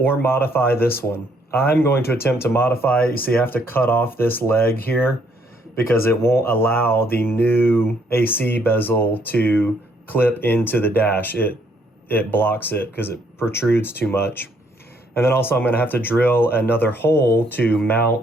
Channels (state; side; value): normal; both; correlation 0.69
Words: modify this one. I'm going to attempt to modify it. You see, I have to cut off this leg here because it won't allow the new AC bezel to clip into the dash. It blocks it because it protrudes too much. And then also I'm going to have to drill another hole to